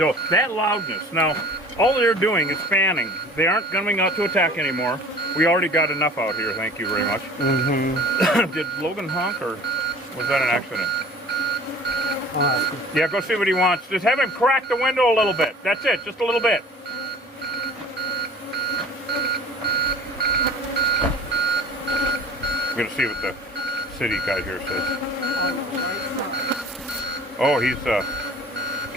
that loudness, now, all they're doing is fanning. They aren't coming out to attack anymore. We already got enough out here, thank you very much. Did Logan honk, or was that an accident? Yeah, go see what he wants. Just have him crack the window a little bit. That's it, just a little bit. We're gonna see what the city guy here says. Oh, he's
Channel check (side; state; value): both; normal; correlation 0.45